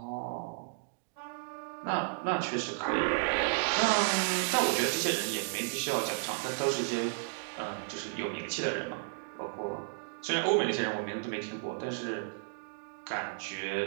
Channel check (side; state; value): left; silent; digital silence